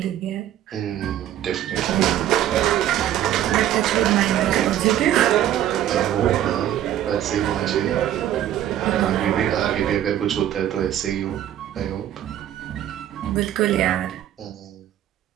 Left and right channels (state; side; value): quieter; left; 11.8 dB